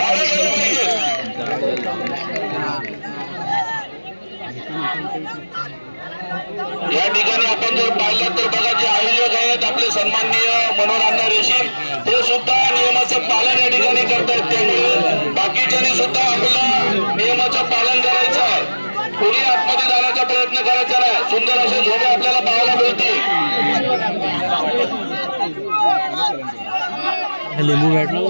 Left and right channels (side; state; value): both; inverted; correlation -1.00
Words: या ठिकाणी आपण जर पाहिलं तर बघा जे आयोजक आहेत आपले सन्माननीय मनोहर अण्णा रेशीम ते सुद्धा नियमाचं पालन या ठिकाणी करतायत. त्यामुळे बाकीच्यांनी सुद्धा आपलं नियमाचं पालन करायचं आहे. कोणी आतमध्ये जाण्याचा प्रयत्न करायचा नाही. सुंदर असे झोडे आपल्याला पाहायला मिळतील. लिंबू भेटला